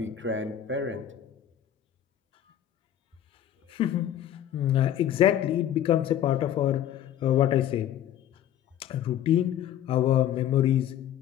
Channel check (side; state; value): right; quieter; 10.8 dB